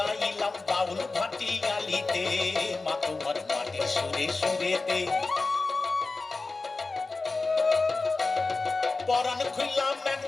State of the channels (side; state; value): right; quieter; 3.7 dB